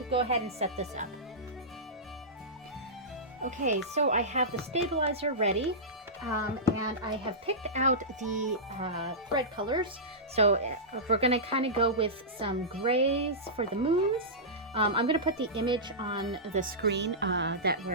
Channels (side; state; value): both; normal; correlation -0.16